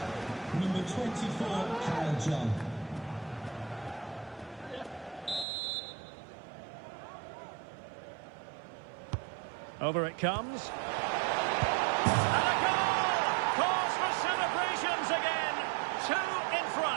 Over it comes. And a goal! Cause for celebrations again. 2 in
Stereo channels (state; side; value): drops out; left; at 5.5 s